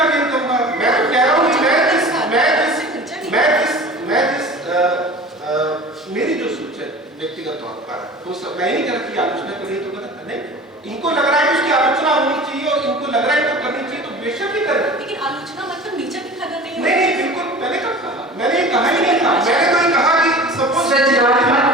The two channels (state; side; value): normal; both; correlation 0.39